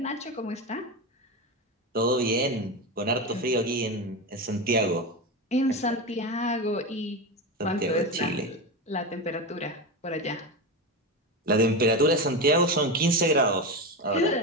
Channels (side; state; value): both; normal; correlation 0.18